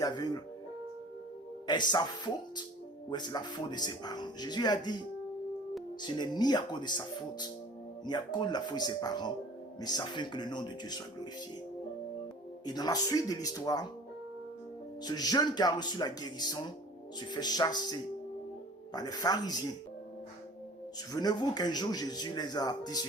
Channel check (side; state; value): both; normal; correlation 0.46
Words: aveugle, est-ce sa faute ou est-ce la faute de ses parents? Jésus a dit, ce n'est ni à cause de sa faute, ni à cause de la faute de ses parents, mais ça fait que le nom de Dieu soit glorifié. Et dans la suite de l'histoire, ce jeune qui a reçu la guérison se fait chasser par les pharisiens. Souvenez-vous qu'un jour Jésus les a dit